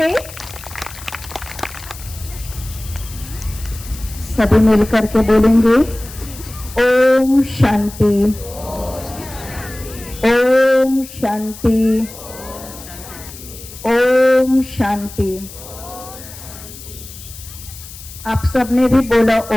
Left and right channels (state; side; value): noise; left; hiss, 15 dB below the sound